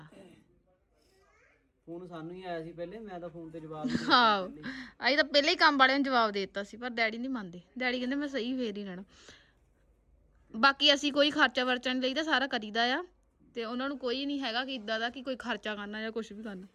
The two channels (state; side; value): identical; both; correlation 1.00